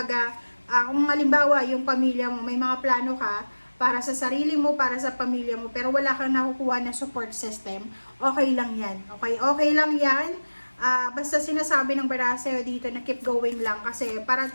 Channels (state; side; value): inverted; both; correlation -1.00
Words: kung halimbawa, yung pamilya mo, may mga plano ka, para sa sarili mo, para sa pamilya mo, pero wala kang nakukuha na support system, okay lang yan. Okay lang yan. Basta sinasabi ng baraha sa'yo dito na keep going lang kasi